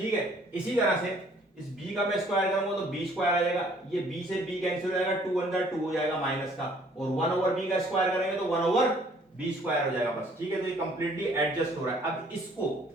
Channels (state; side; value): normal; both; correlation 0.59